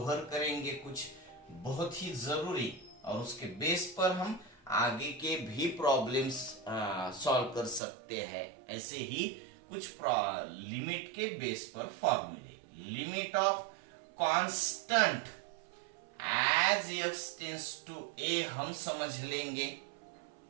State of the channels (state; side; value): drops out; left; at 7.8 s